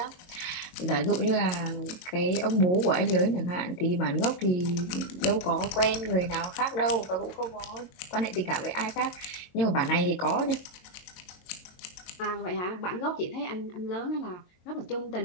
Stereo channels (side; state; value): right; late; 22 ms